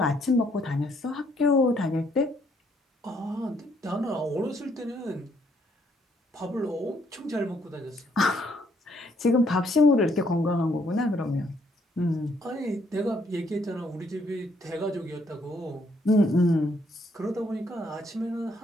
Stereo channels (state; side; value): normal; both; correlation 0.69